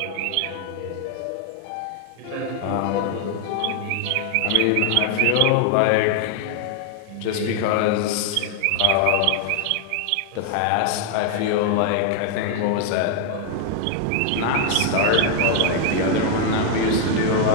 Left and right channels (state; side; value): different; both; correlation 0.00